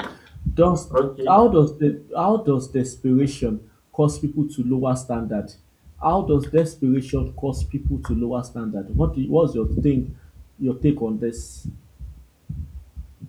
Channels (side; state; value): both; identical; correlation 1.00